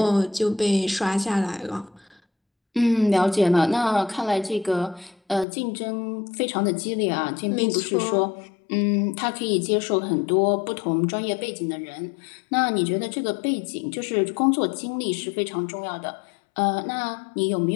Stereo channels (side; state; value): right; drops out; at 5.5 s